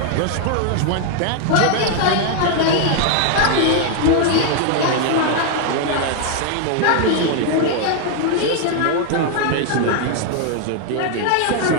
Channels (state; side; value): different; both; correlation 0.00